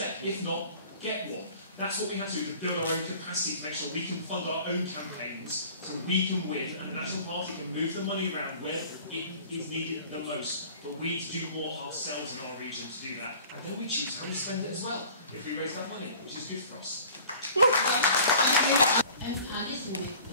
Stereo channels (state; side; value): inverted; both; correlation -0.47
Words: If not, get one. That's what we have to do, to build our own capacity, to make sure we can fund our own campaigns, so we can win, and the National Party can move the money around where it is needed the most. But we need to do more ourselves in our region to do that, and then we choose how we spend it as well, if we raise that money, which is good for us. I listened